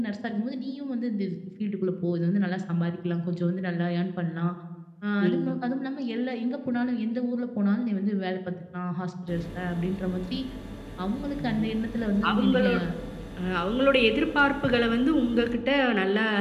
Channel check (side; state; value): both; identical; correlation 1.00